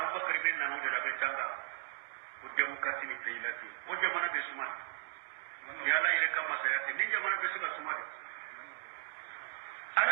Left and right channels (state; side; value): silent; left; digital silence